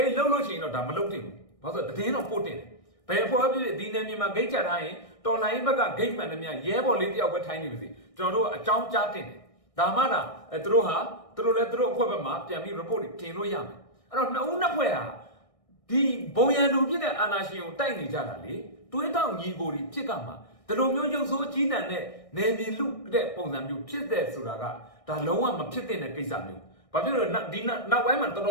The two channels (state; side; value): late; right; 1.6 ms